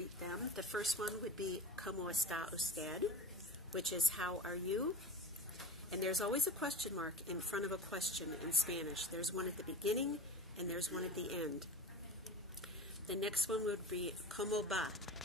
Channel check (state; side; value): normal; both; correlation 0.32